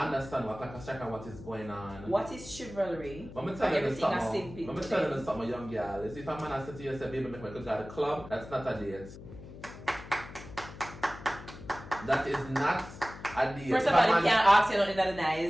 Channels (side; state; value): left; noise; hum, 15 dB below the sound